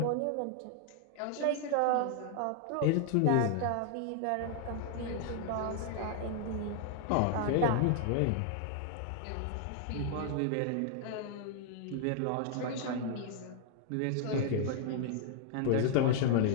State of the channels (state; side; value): different; both; correlation -0.01